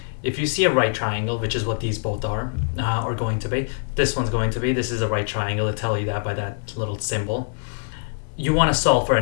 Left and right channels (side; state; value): right; silent; digital silence